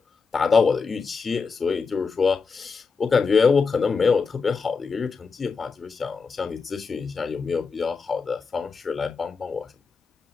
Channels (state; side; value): quieter; right; 5.0 dB